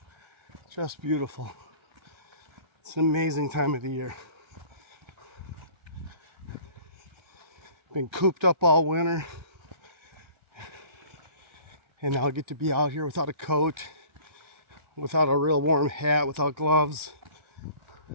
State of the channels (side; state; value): left; late; 1.4 ms